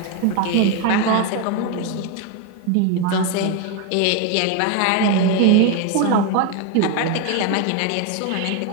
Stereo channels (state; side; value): different; both; correlation 0.02